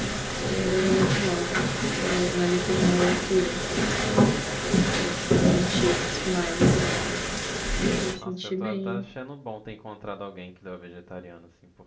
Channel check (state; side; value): identical; both; correlation 1.00